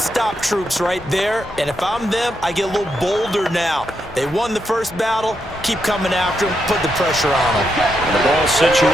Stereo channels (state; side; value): normal; both; correlation 0.82